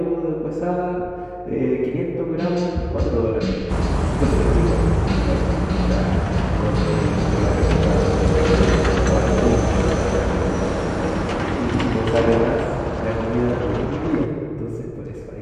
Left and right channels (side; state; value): both; identical; correlation 1.00